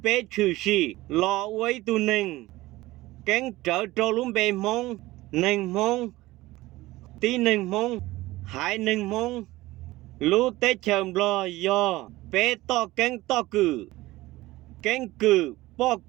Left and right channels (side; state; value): left; quieter; 18.4 dB